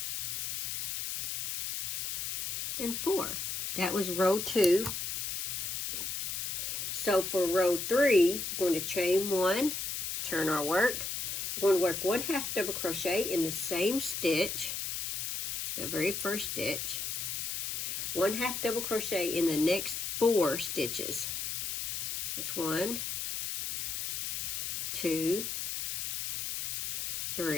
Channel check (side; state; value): left; noise; hiss, 3 dB below the sound